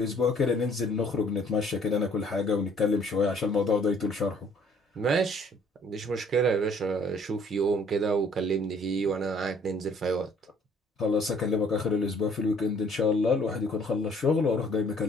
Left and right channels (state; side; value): normal; both; correlation 0.59